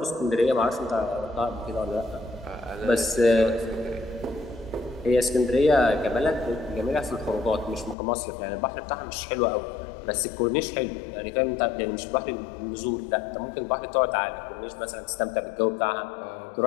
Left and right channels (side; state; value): right; drops out; at 8.0 s